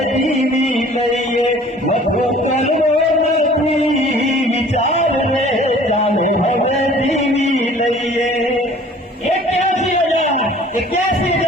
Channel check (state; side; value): normal; both; correlation 0.50